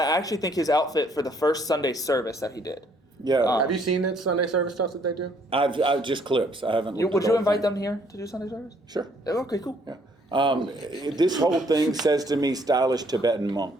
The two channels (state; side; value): normal; both; correlation 0.65